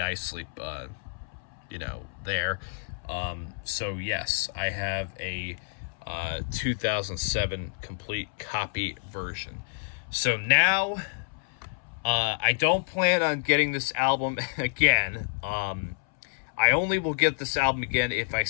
you know, there. So yes, I have a 2007 complete copy version. So now I don't plan on getting this album again. I only will get this album again if I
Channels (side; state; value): right; silent; 59 dB below the other